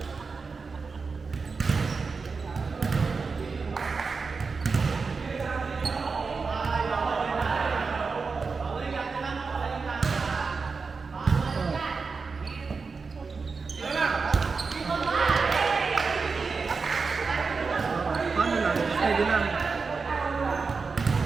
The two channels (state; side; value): quieter; left; 4.7 dB